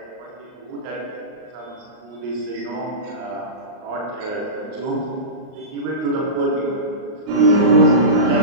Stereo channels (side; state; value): left; late; 38 ms